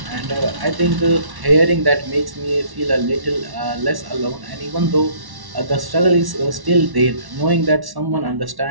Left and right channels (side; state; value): left; late; 1.1 ms